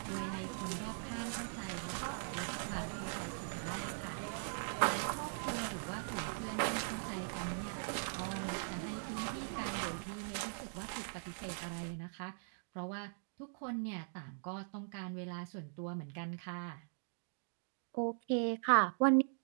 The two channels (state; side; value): silent; left; digital silence